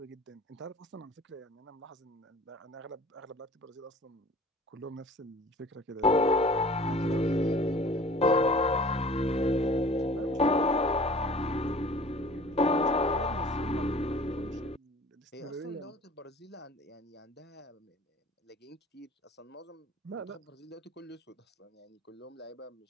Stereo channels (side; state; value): both; normal; correlation 0.47